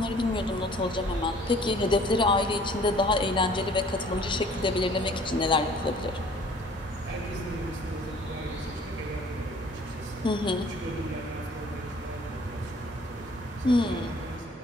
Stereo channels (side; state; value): both; normal; correlation 0.53